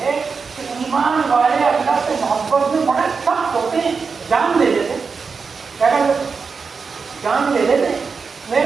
ہے کہ ایمان والے اللہ سے محبت میں بڑے سخت ہوتے ہیں، جان دے دیتے، کیا کہتے ہیں؟ جان دے دیتے۔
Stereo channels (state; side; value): quieter; left; 5.1 dB